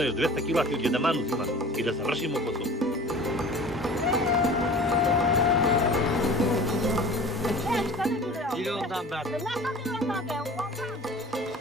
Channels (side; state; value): both; normal; correlation 0.42